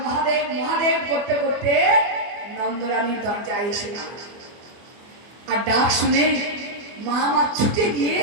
মহাদেব, মহাদেব করতে করতে নন্দরানীর দরজায় এসে দাঁড়ালো। আর ডাক শুনে মা আমার ছুটে গিয়ে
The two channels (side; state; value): left; late; 24 ms